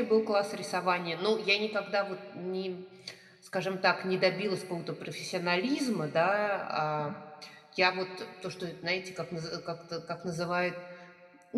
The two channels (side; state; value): both; identical; correlation 1.00